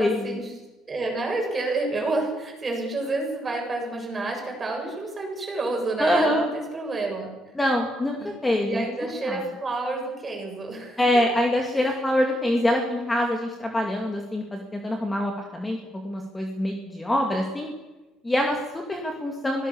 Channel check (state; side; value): normal; both; correlation 0.79